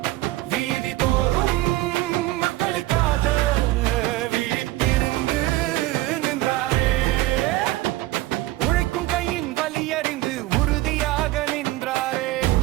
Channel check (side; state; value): left; quieter; 17.4 dB